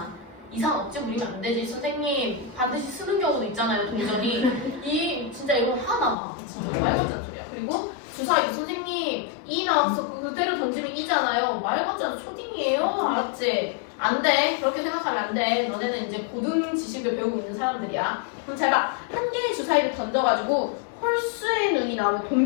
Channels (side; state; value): right; drops out; at 6.2 s